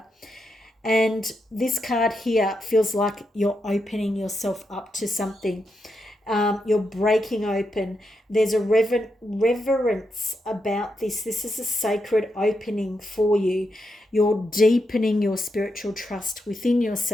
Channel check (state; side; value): normal; both; correlation 0.84